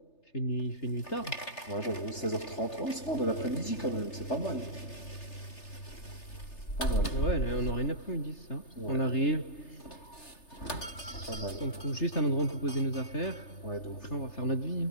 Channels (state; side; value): late; right; 3.3 ms